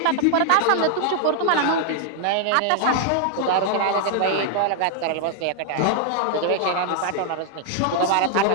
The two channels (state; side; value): different; both; correlation 0.00